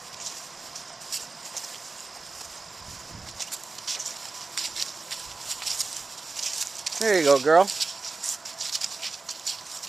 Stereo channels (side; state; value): left; quieter; 3.9 dB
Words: There you go, girl.